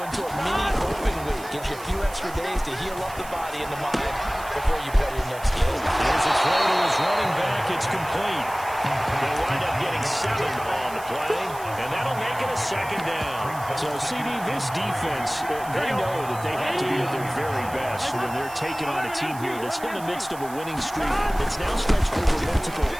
into a mini open week. Gives you a few extra days to heal up the body and the mind before you play your next game. Here's a throw to his running back. It's complete. They'll wind up getting 7 on the play, and that'll make it a 2nd down. So, CD, this defense, they know that they have to be at their very best when they're taking on a team here that's in the midst of a winning streak that's now stretched over multiple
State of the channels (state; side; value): noise; right; hiss, 17 dB below the sound